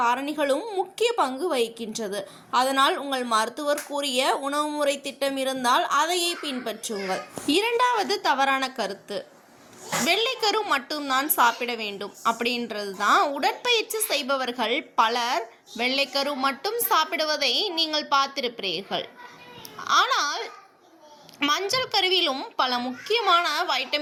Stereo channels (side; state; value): both; identical; correlation 1.00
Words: முக்கிய பங்கு வகிக்கின்றது. அதனால் உங்கள் மருத்துவர் கூறிய உணவு முறை திட்டம் இருந்தால் அதையே பின்பற்றுங்கள். இரண்டாவது தவறான கருத்து, வெள்ளைக்கரு மட்டும்தான் சாப்பிட வேண்டும் அப்படின்றது தான். உடற்பயிற்சி செய்பவர்கள் பலர் வெள்ளைக்கரு மட்டும் சாப்பிடுவதை நீங்கள் பார்த்திருப்பீர்கள். ஆனால் மஞ்சள் கருவிலும் பல முக்கியமான